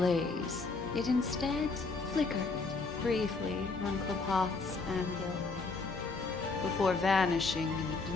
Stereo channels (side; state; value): right; quieter; 4.0 dB